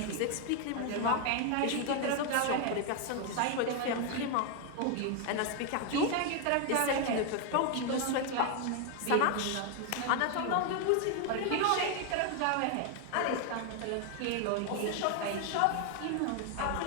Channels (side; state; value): both; different; correlation 0.01